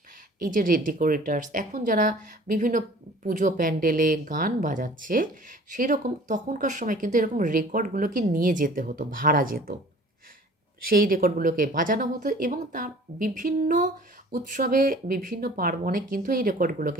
এই যে ডেকোরেটার্স, এখন যারা বিভিন্ন পুজো প্যান্ডেলে গান বাজাচ্ছে, সেরকম তখনকার সময় কিন্তু এরকম রেকর্ডগুলোকে নিয়ে যেতে হতো, ভাড়া যেত, সেই রেকর্ডগুলোকে বাজানো হতো এবং তার বিভিন্ন উৎসবে, বিভিন্ন পার্বণে কিন্তু এই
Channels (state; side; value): normal; both; correlation 0.48